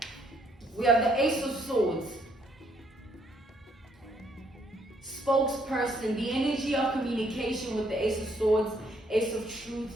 We have the Ace of Swords. Spokesperson, the energy of communication with the Ace of Swords, Ace of Truth,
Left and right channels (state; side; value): normal; both; correlation 0.69